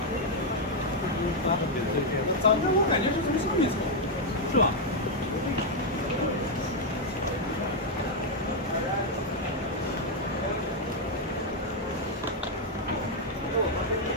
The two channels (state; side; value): normal; both; correlation 0.00